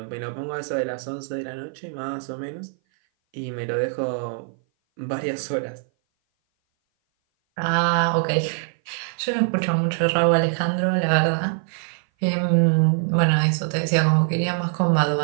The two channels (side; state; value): left; silent; 58 dB below the other